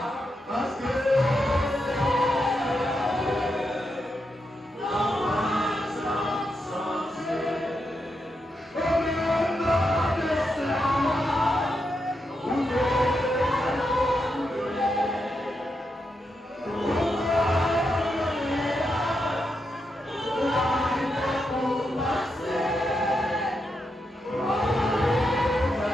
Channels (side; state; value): both; normal; correlation 0.84